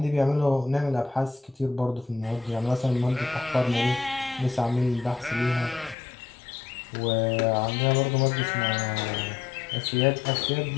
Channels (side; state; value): right; drops out; at 6.0 s